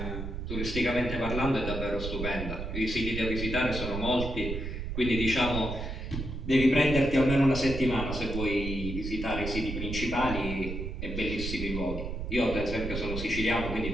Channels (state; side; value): noise; right; rumble, 5 dB below the sound